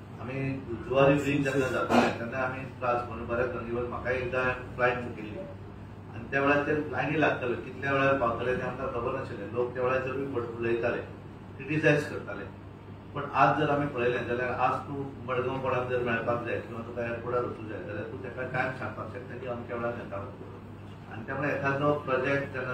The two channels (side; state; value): both; identical; correlation 1.00